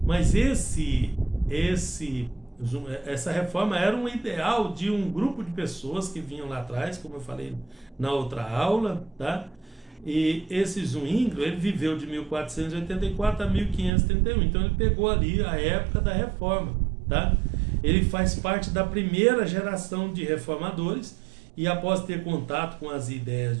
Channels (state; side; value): drops out; left; at 13.9 s